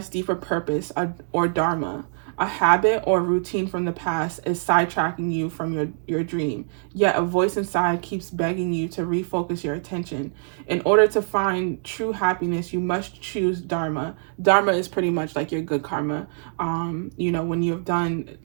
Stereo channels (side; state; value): left; silent; digital silence